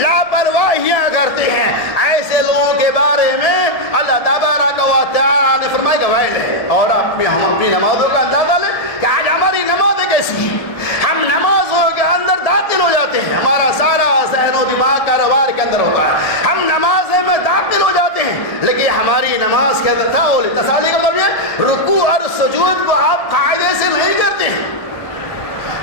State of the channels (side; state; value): right; late; 1.7 ms